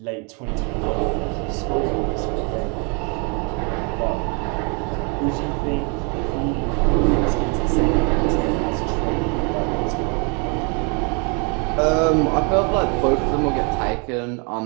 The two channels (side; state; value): left; quieter; 34.9 dB